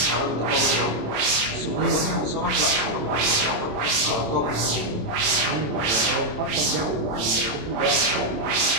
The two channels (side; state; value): left; late; 26 ms